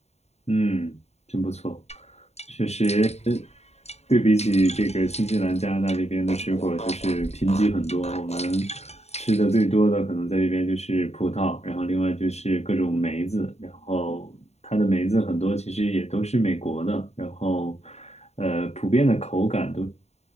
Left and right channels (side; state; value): right; late; 0.31 ms